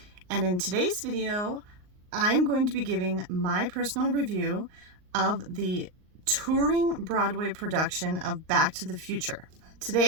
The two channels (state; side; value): late; left; 38 ms